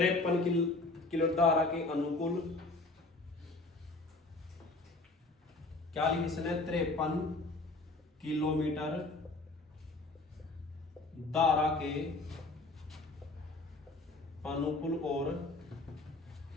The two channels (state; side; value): quieter; right; 3.2 dB